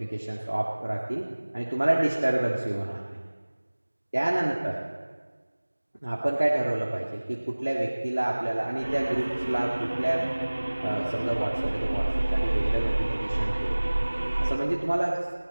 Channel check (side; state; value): both; inverted; correlation -1.00